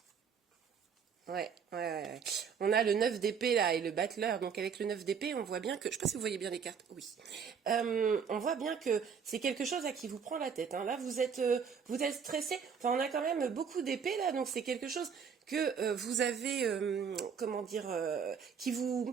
Ouais. On a le 9 d'épée là et le battleur. Donc avec le 9 d'épée, on voit bien que... Je ne sais pas si vous voyez bien les cartes. Oui. On voit bien que c'est quelque chose à qui vous prend la tête. Là, vous êtes stressé. Enfin, on a quand même beaucoup d'épées là. Donc c'est quelque chose que vous avez... comment dire qui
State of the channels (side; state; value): left; quieter; 6.6 dB